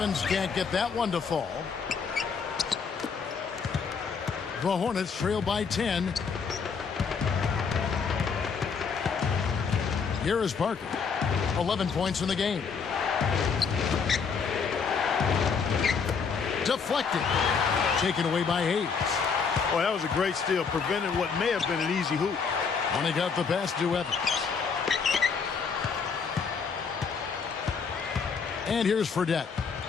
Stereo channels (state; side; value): quieter; right; 5.7 dB